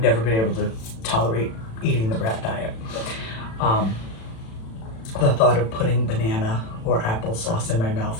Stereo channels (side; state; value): right; late; 36 ms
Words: never been able to tolerate eating the brat diet. The thought of putting banana or applesauce in my